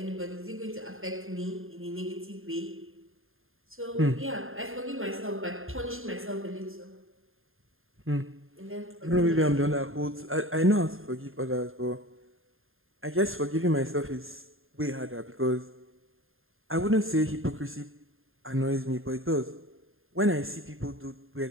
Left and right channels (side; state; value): left; late; 0.60 ms